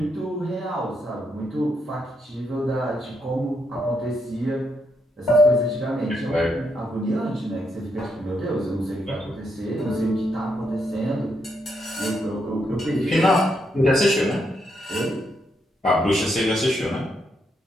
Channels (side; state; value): both; normal; correlation 0.79